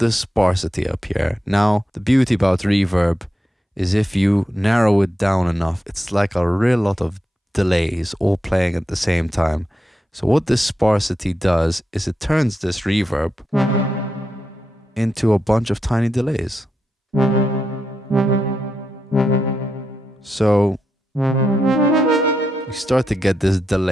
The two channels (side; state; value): both; normal; correlation 0.86